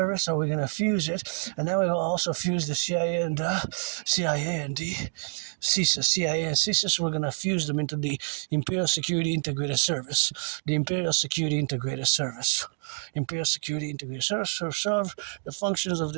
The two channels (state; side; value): silent; left; 60 dB below the other